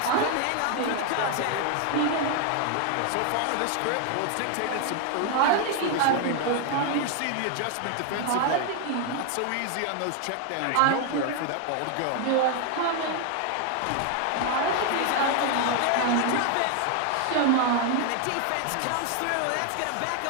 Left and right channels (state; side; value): different; both; correlation 0.00